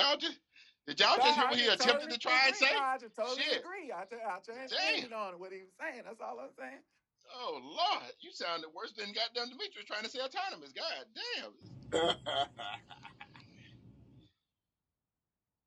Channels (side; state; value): both; identical; correlation 1.00